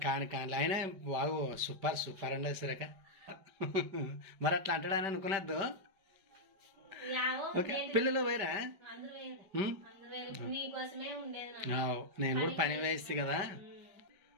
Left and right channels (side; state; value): left; late; 5.2 ms